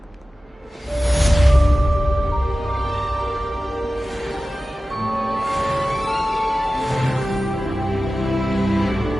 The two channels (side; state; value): both; normal; correlation 0.95